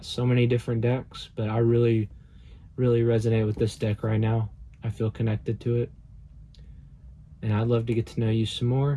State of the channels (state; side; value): identical; both; correlation 1.00